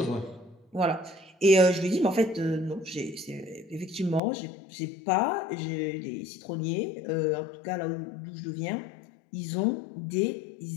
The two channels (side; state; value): right; drops out; at 4.2 s